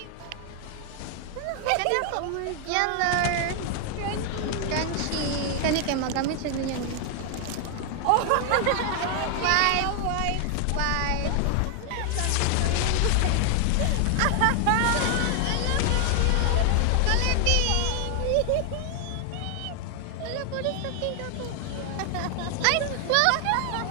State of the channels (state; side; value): different; both; correlation 0.00